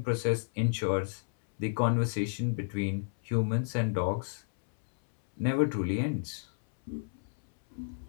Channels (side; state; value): right; silent; 57 dB below the other